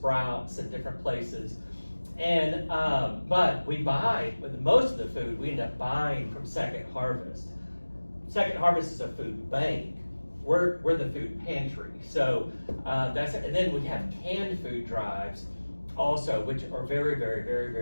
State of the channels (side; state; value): both; inverted; correlation -1.00